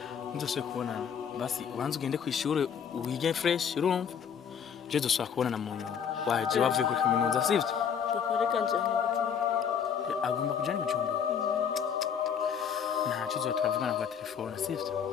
ndose kubonana basi ubanze ugende ku ishure wige fresh urumva je dosaba kubonana mu nyuma waje wavuye ku kaminuza sivyo reka njye agomba kujana ibijumbu ntacyo zo turavugana kwa telefone sivyo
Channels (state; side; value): quieter; right; 7.6 dB